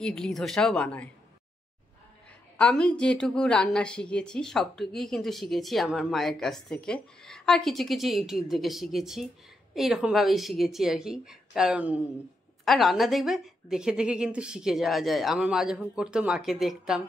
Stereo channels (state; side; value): normal; both; correlation 0.82